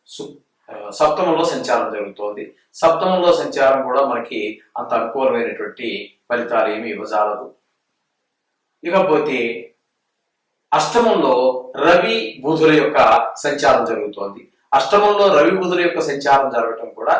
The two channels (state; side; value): identical; both; correlation 1.00